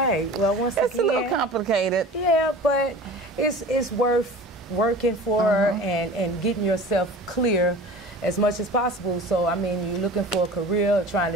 Well, once again, it's a little complicated. Yeah, but it's worth working for and getting yourself clear. as much as possible. So, I mean, you're looking for a career, trying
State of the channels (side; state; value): both; normal; correlation 0.39